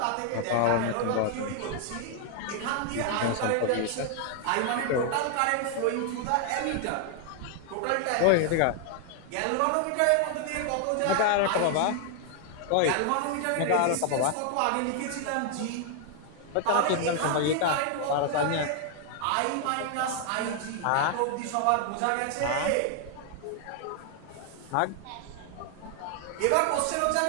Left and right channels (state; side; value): different; both; correlation 0.00